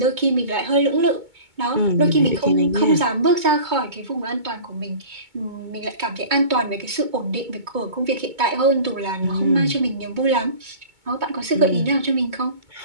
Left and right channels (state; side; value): late; left; 2.2 ms